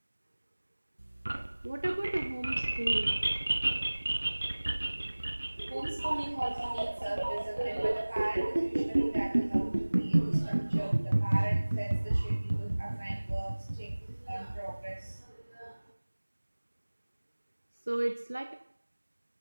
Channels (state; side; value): inverted; both; correlation -1.00